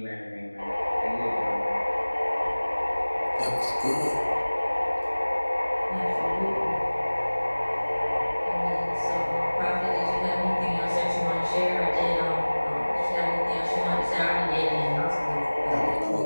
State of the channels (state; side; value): inverted; both; correlation -1.00